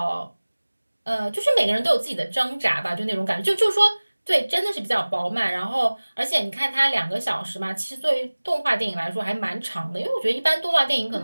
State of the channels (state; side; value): inverted; both; correlation -1.00